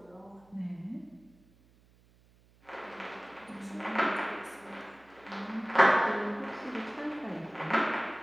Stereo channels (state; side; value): noise; right; hum, 29 dB below the sound